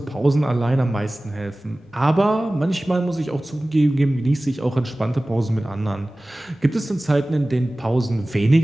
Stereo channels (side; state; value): both; normal; correlation 0.98